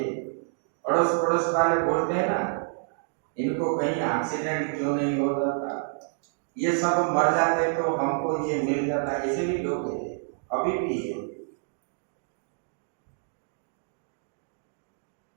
अड़ोस पड़ोस वाले बोलते हैं ना, इनको कहीं एक्सीडेंट क्यों नहीं हो जाता, ये सब मर जाते तो हमको ये मिल जाता। ऐसे भी लोग हैं, अभी भी है।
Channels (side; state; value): left; silent; digital silence